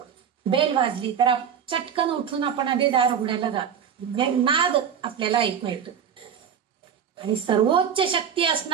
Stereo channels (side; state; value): left; quieter; 8.0 dB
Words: बेल वाजली तर चटकन उठून आपण आधी दार उघडायला जातो. नाद आपल्याला ऐकू येतो. आणि सर्वोच्च शक्ती